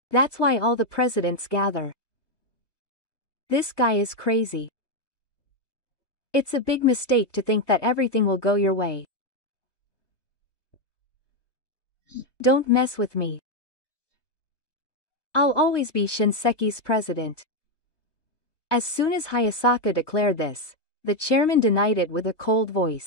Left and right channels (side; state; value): right; late; 1.1 ms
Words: That's why all the presidents gather. This guy is crazy. It's a big mistake to think that everything will go your way. Don't mess with me. I'll always be Shinseki's president. As soon as Hayasaka declared this, the chairman denied it with a cold